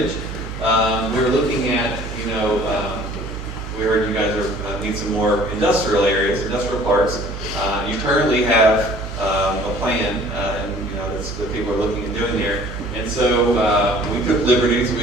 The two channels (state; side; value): noise; right; hum, 8 dB below the sound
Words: We were looking at, we heard you guys need some more industrial areas, industrial parks. You currently have a plan, and that's what people are looking at doing there. And so we took liberties.